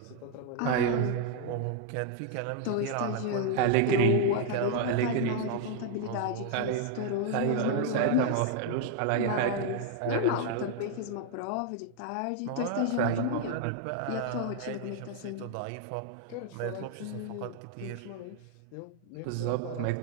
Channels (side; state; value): both; different; correlation 0.00